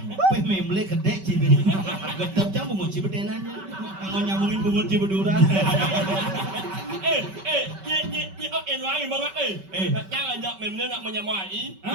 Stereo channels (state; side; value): late; left; 5.2 ms